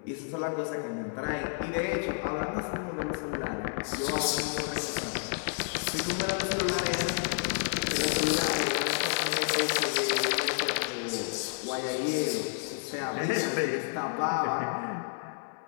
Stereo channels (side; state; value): right; silent; 58 dB below the other